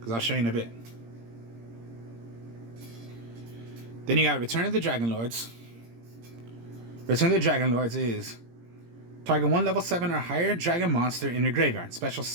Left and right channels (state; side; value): late; left; 17 ms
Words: I'll show you in a bit. Then you got Return of the Dragon Lords. Return of the Dragon Lords is target 1 level 7 or higher dragon monster in your graveyard. Special